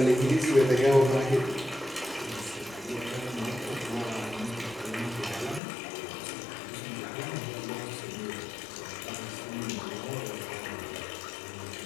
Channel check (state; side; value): drops out; right; at 5.6 s